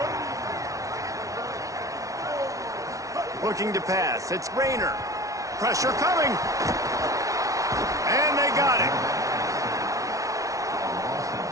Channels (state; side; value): late; left; 0.16 ms